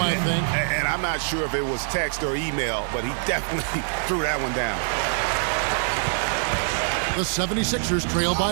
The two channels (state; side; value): silent; left; digital silence